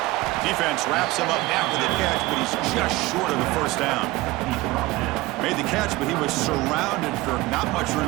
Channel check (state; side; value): quieter; left; 19.7 dB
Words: Defense wraps him up after the catch, but he's just short of the first down. Made the catch, but he was surrounded for not much